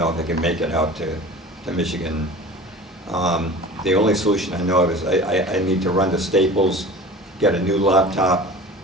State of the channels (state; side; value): normal; both; correlation 0.39